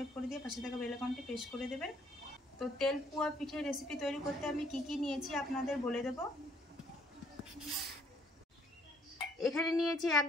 करे दिये पाशे थाका बेल आइकनटी प्रेस करे देबेन। तो तेल पुआ पिठे रेसिपि तैरी करते आमी कि नियेछि आपनादेर बोले देबो। एखाने नियेछि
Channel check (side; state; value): both; normal; correlation 0.64